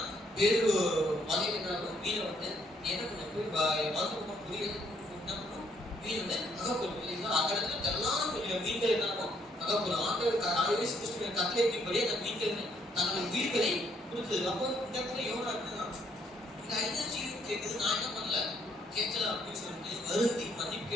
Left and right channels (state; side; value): normal; both; correlation 0.70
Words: வேறு மலையில என்னாலும் மீனை வந்து என்ன பண்ண போய் வாழ்க்கை புரிய என்ன பண்ணும், மீன் வந்து அகப்படும் இல்லைங்களா. அந்த இடத்துல தெல்லான கொஞ்சம் மீன்கள் என்னாலும் அகப்படும். ஆண்டவர் கட்டளைப்படி அந்த மீன்கள் தன்னுடைய உயிர்களை கொடுத்தது. அப்போ இந்த இடத்துல யோனா என்னன்னா, இந்த 5 ஜீவன் கேட்குது, நான் என்ன பண்ணல கேட்கல அப்படின்னு சொல்லிட்டு வருந்தி மன்னிப்பு